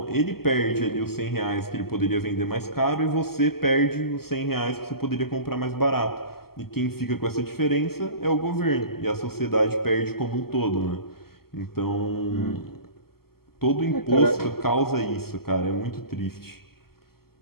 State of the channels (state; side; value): late; right; 0.95 ms